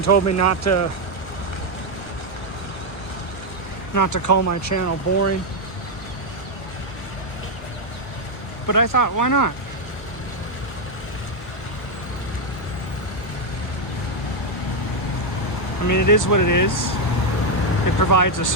told me not to call my channel boring. But I thought, why not? I mean, it is what it is. It provides a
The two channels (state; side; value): late; right; 1.0 ms